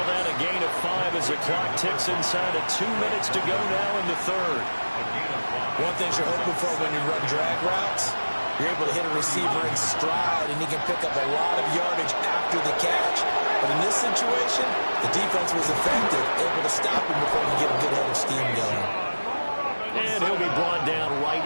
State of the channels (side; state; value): both; inverted; correlation -1.00